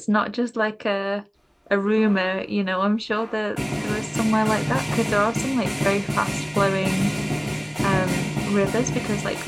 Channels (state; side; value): identical; both; correlation 1.00